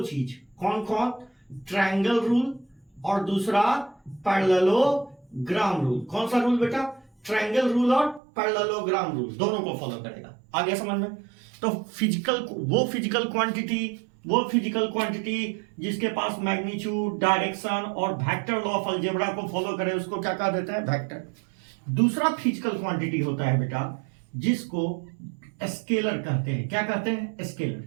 चीज, कौन कौन, ट्रायंगल रूल और दूसरा पैरेललोग्राम रूल। कौन सा रूल बेटा, ट्रायंगल रूल और पैरेललोग्राम रूल, दोनों को फॉलो करेगा। आ गया समझ में। तो वो फिजिकल क्वांटिटी जिसके पास मैग्नीट्यूड, डायरेक्शन और वेक्टर लॉ ऑफ अलजेब्रा को फॉलो करे उसको क्या कह देते हैं, वेक्टर। दूसरा फिजिकल क्वांटिटी होता है बेटा जिसको स्केलर कहते हैं। क्या कहते हैं, स्केलर।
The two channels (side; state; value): left; drops out; at 8.2 s